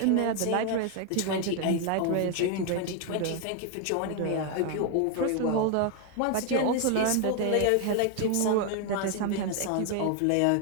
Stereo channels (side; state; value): both; different; correlation 0.01